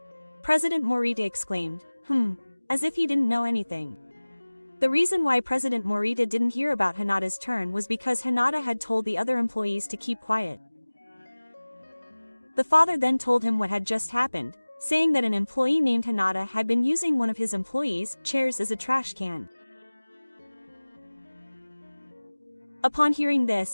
President Morita exclaimed, as if he didn't know anything. The reason why President Morita didn't hear about Hinata's turn was because Hinata had told the other employees to keep quiet. The father then told him what had just happened, saying that an employee named Hinata had been using one of his employees' chairs as a trash can. Upon hearing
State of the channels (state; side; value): inverted; both; correlation -1.00